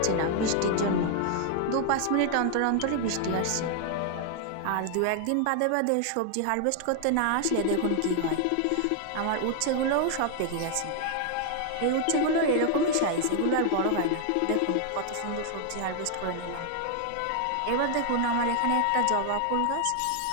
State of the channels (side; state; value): both; different; correlation 0.00